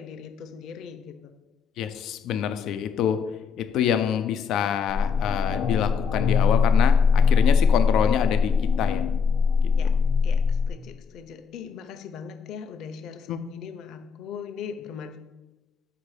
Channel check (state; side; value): quieter; right; 6.0 dB